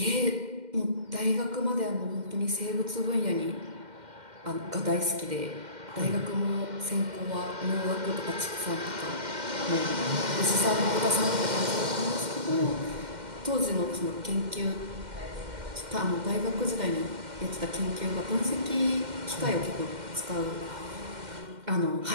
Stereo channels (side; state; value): left; late; 2.1 ms